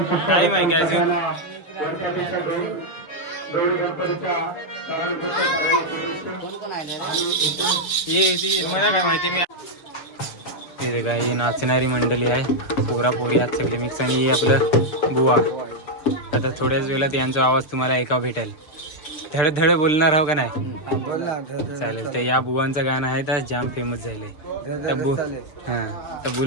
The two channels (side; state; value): right; late; 6.7 ms